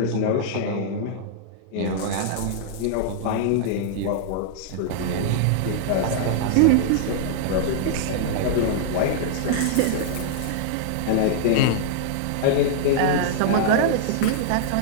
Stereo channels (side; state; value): both; different; correlation -0.01